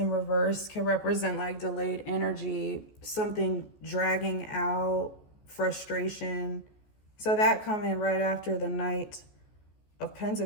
reverse can represent like delayed energy, something dragging out, frustration. So that coming right after the Knight of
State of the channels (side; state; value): right; late; 14 ms